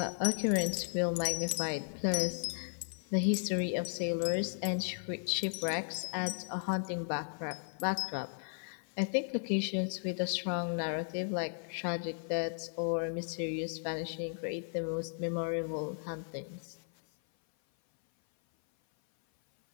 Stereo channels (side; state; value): right; silent; 54 dB below the other